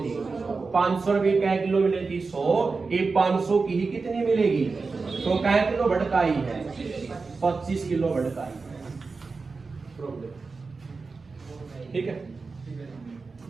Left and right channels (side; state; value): left; quieter; 4.3 dB